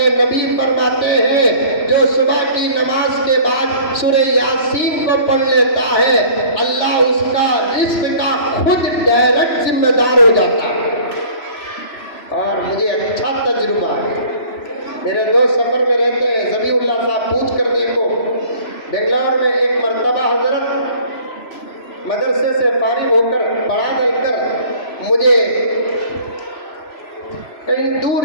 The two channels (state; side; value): late; right; 3.0 ms